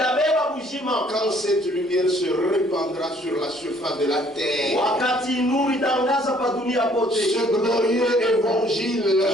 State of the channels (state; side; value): normal; both; correlation 0.61